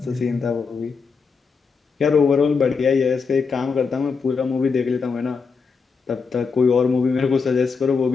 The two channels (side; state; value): right; quieter; 5.2 dB